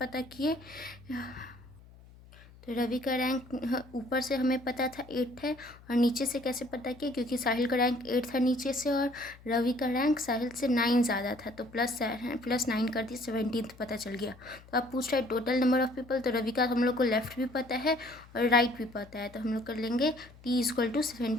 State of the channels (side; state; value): left; noise; hum, 22 dB below the sound